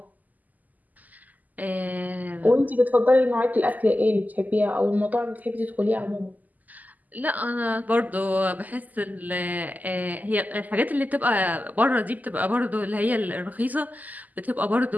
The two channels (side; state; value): left; late; 0.081 ms